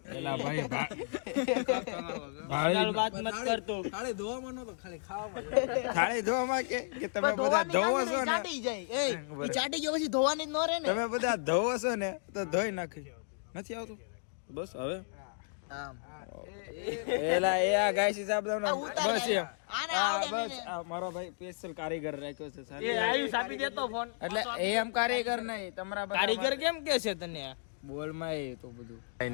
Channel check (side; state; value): right; silent; digital silence